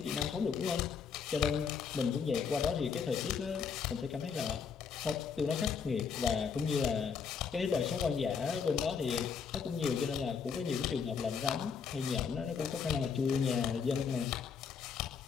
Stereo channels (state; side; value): quieter; right; 6.2 dB